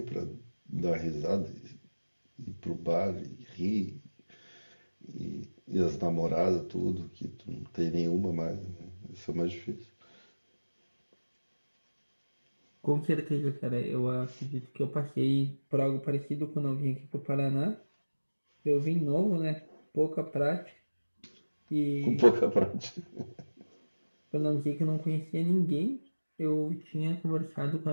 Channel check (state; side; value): inverted; both; correlation -1.00